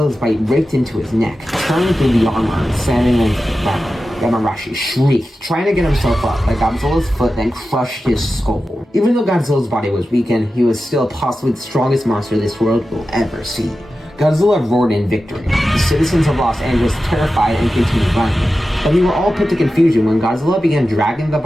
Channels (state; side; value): normal; both; correlation 0.93